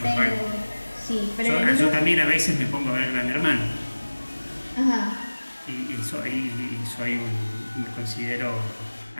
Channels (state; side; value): inverted; both; correlation -1.00